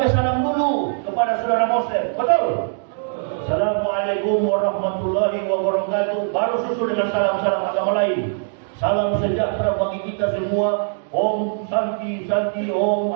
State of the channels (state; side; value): silent; left; digital silence